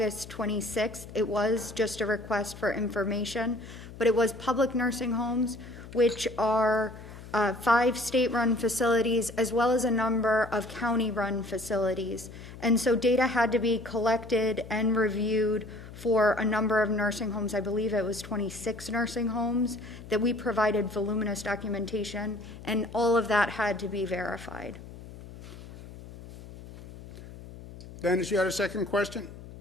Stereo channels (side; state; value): left; noise; hum, 15 dB below the sound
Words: 26th. It was just a request for information, but it was public nursing homes, which are 5 state-run facilities, as well as a number of county-run facilities. And so data had to be collected and reviewed for a number of nursing homes. I believe it was 26 nursing homes that we provided voluminous documentation, and all of that had to be verified. Dennis, you had a second question?